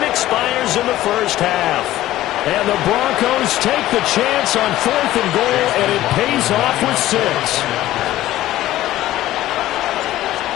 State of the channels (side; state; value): right; quieter; 14.9 dB